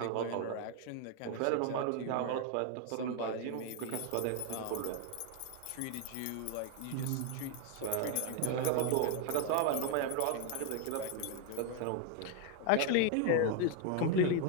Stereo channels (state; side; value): different; both; correlation 0.00